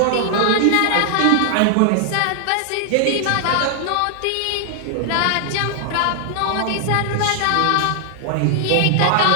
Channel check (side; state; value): both; different; correlation 0.00